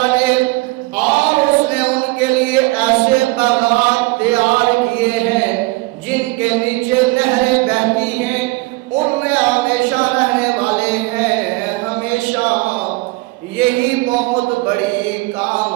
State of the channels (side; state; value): left; quieter; 22.8 dB